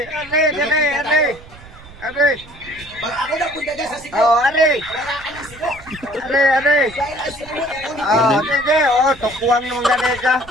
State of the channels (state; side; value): noise; right; rumble, 20 dB below the sound